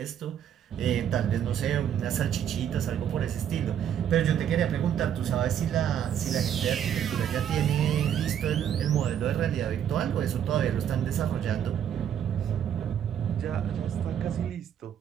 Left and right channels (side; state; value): left; quieter; 9.4 dB